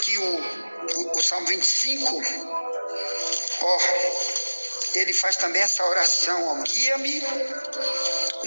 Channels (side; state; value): both; inverted; correlation -1.00